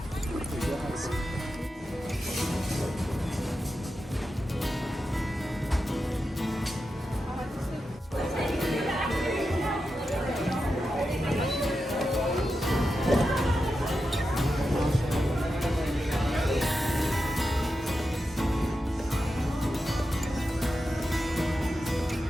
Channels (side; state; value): both; normal; correlation 0.89